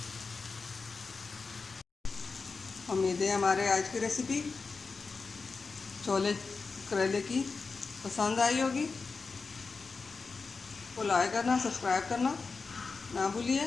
उम्मीद है हमारे आज की रेसिपी छोले करेले की पसंद आई होगी। तो लाइक करना, सब्सक्राइब करना ना भूलिए।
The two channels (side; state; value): right; quieter; 4.5 dB